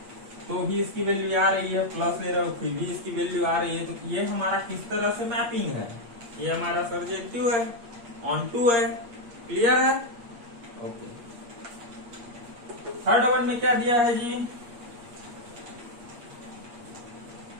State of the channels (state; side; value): late; left; 8.5 ms